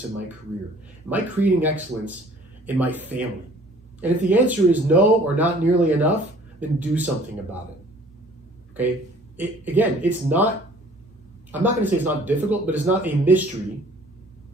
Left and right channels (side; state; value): both; normal; correlation 0.53